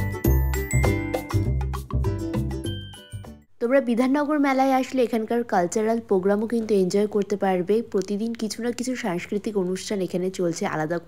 তোমরা বিধাননগর মেলায় আসলে এখানকার কালচারাল প্রোগ্রামও কিন্তু এনজয় করতে পারবে। প্রতিদিন কিছু না কিছু সাংস্কৃতিক অনুষ্ঠান এখানে চলছে, আলাদা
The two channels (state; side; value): identical; both; correlation 1.00